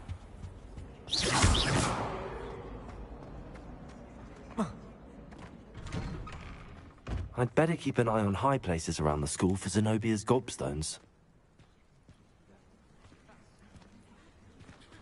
I'd better keep an eye on high places around the school for Zenobia's gobstones.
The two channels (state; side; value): identical; both; correlation 1.00